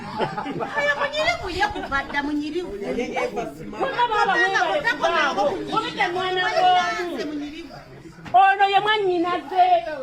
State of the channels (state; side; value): identical; both; correlation 1.00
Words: Ayo munyirivu yakubadda munyirivu. Ono ye mwannyinaze